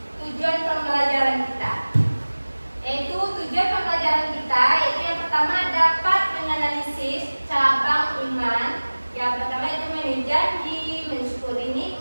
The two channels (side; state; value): both; inverted; correlation -1.00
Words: tujuan pembelajaran kita, yaitu tujuan pembelajaran kita yaitu yang pertama dapat menganalisis cabang iman. Yang pertama itu memenuhi janji, mensyukuri